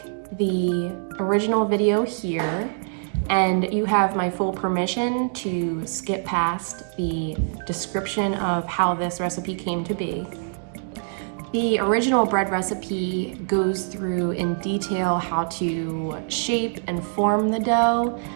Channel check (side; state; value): left; silent; digital silence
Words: the original video here, and you have my full permission to skip past the description of how this recipe came to be. The original bread recipe goes through in detail how to shape and form the dough